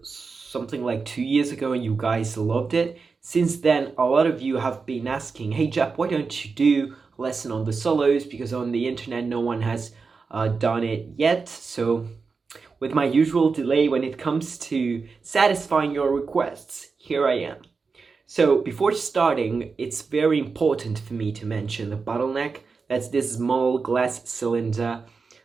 something like 2 years ago and you guys loved it. Since then, a lot of you have been asking, hey Jepp, why don't you do a lesson on the solos? Because on the internet no one has done it yet. So with my usual delay when it comes to satisfying your requests, here I am. So before starting, it's very important for me to mention the Bottleneck. That's this small glass cylinder.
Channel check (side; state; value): left; quieter; 4.8 dB